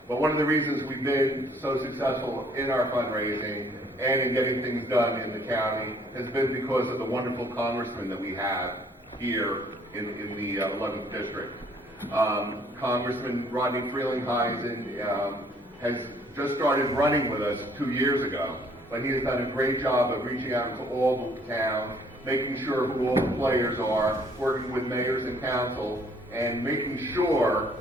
one of the reasons we've been so successful in our fundraising and in getting things done in the county has been because of the wonderful congressmen that we have here in the 11th District. Congressman Rodney Frelinghuysen has just started running with us 2 years ago, but he has done a great job of reaching out to all the town, making sure who all the players are, working with mayors and council, and making sure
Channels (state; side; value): normal; both; correlation 0.62